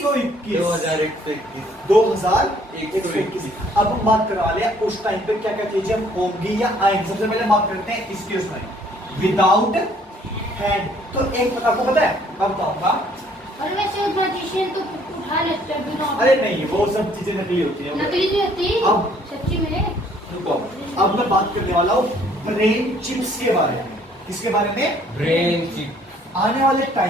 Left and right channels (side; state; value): both; normal; correlation 0.61